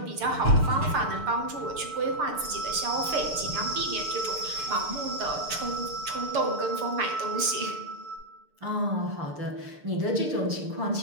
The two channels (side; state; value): left; late; 6.7 ms